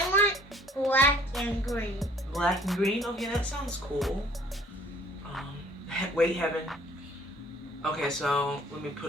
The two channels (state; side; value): normal; both; correlation 0.56